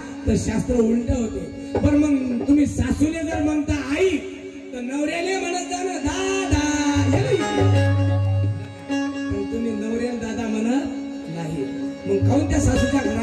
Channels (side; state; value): both; identical; correlation 1.00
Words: तर शास्त्र उलट होते. पण मग तुम्ही सासूले जर म्हणता आई तर नवऱ्याने म्हणत जा ना दादा. पण तुम्ही नवऱ्याला दादा म्हणत नाही मग काऊन त्या सासूच्या